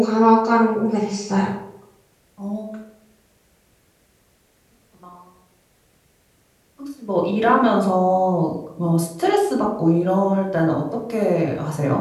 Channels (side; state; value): both; identical; correlation 1.00